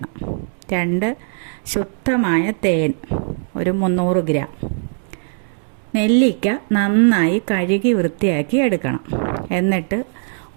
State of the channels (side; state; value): left; silent; 66 dB below the other